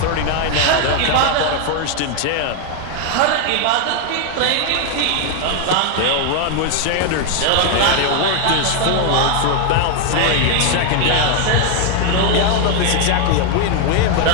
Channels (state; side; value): different; both; correlation 0.01